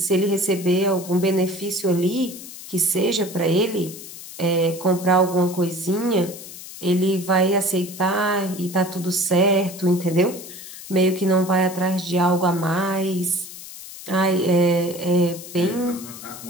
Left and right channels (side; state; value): left; noise; hiss, 14 dB below the sound